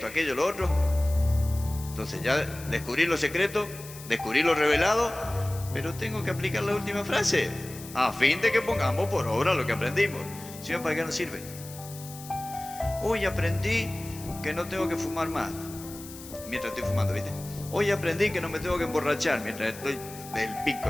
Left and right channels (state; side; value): noise; left; hiss, 15 dB below the sound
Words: aquello, lo otro. Entonces ya descubrí lo secreto, descubrí lo revelado, pero tengo que aplicar la última frase, a fin de que pongamos por obra lo que aprendimos. Si no, ¿para qué nos sirve? Hoy aprendí que no tengo que fumar más, mientras estoy fumando, ¿viste? Hoy aprendí que no me tengo que emborrachar, mientras estoy del